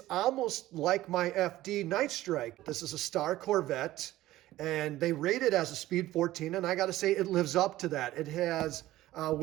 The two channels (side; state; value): left; quieter; 15.7 dB